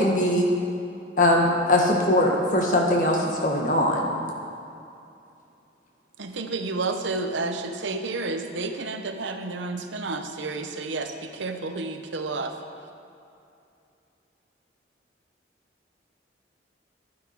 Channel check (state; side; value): normal; both; correlation 0.11